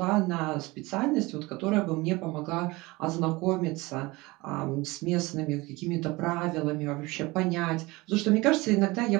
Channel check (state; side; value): quieter; left; 22.5 dB